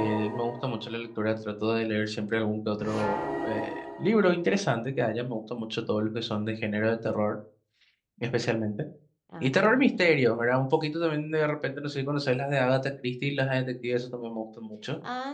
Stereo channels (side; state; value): both; identical; correlation 1.00